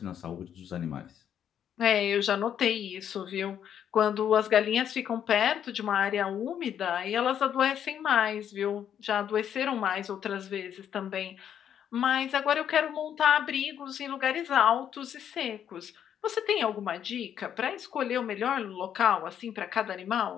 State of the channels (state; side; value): quieter; right; 9.3 dB